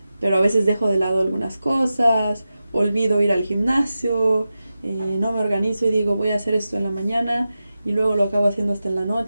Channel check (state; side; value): inverted; both; correlation -0.92